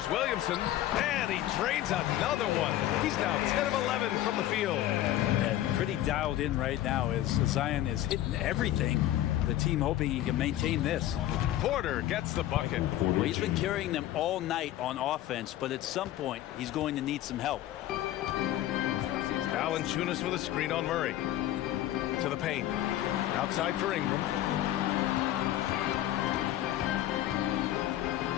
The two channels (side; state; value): right; quieter; 13.5 dB